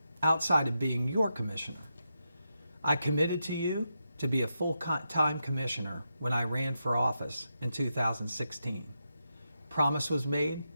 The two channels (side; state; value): both; inverted; correlation -0.86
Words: outside of being your commissioner. I committed to you to be a full-time commissioner when I ran for office in 2016. Promise was made